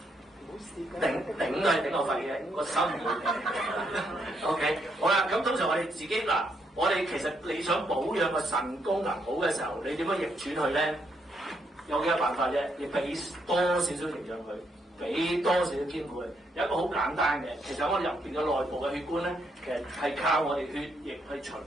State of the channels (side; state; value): both; normal; correlation 0.76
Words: 頂都係頂我肺嘅，個心唔會。OK， 好啦，咁通常我哋自己嗱，我哋其實你想保養個腎功能好嘅時候，你點樣逆轉佢咧？有幾個辦法啫，你俾多少少營養佢，俾多少少兼顧佢。有一個好簡單嘅，其實我哋入邊嘅內部嘅血管咧，其實係靠我哋血液去循